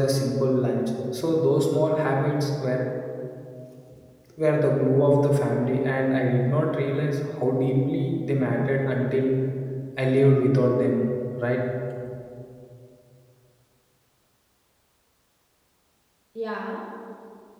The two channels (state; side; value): identical; both; correlation 1.00